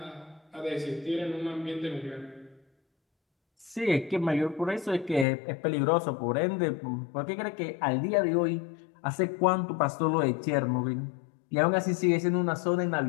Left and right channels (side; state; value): right; drops out; at 5.2 s